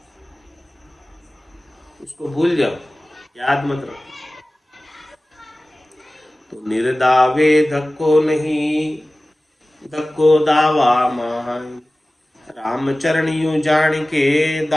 उसको भूल जाओ, याद मत रखो। तो निर्दावे धक्को नहीं धक्को दावा माय। राम चरण यूं जान के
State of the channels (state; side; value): normal; both; correlation 0.97